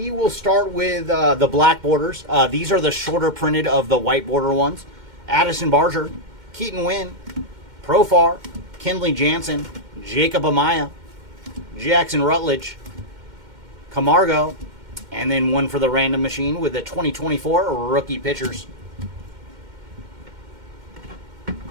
will start with the black borders. These are the shorter printed of the white border ones. Addison Barger, Keaton Wynn, Profar, Kenley Jansen, Jacob Amaya, Jackson Rutledge, Camargo, and then one for the random machine with the 2024 rookie pitchers.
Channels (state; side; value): late; left; 2.1 ms